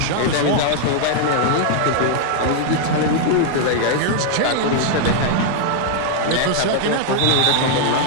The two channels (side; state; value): both; different; correlation 0.00